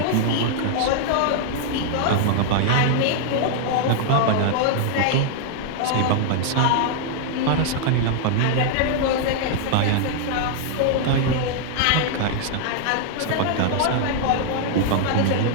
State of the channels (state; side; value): different; both; correlation -0.01